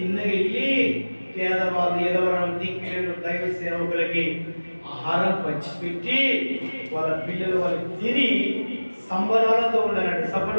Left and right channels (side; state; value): both; inverted; correlation -1.00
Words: పేదవాళ్ళు ఎదవరం దిక్కులేని దైవ సేవకులకి ఆహారం పంచిపెట్టి వాళ్ళ పిల్లలు వాళ్ళకి తిని సంబరాలతో ఉండాలండి.